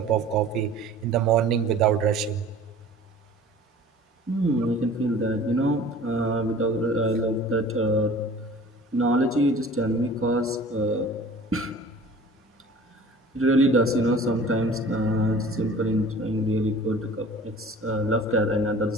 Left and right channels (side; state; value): both; normal; correlation 0.45